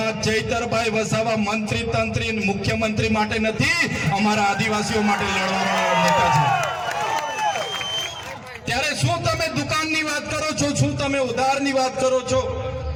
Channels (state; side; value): identical; both; correlation 1.00